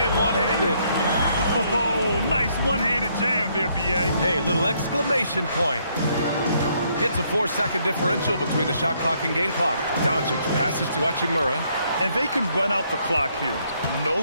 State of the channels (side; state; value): both; inverted; correlation -0.70